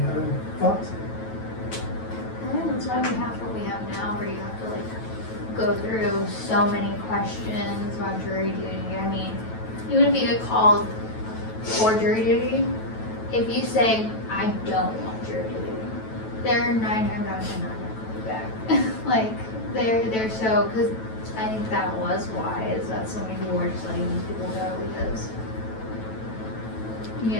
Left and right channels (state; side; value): late; right; 9.1 ms